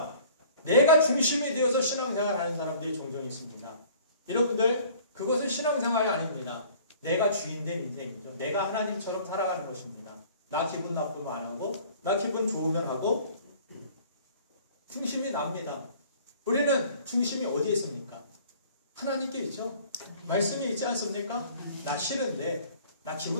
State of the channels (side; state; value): both; inverted; correlation -0.51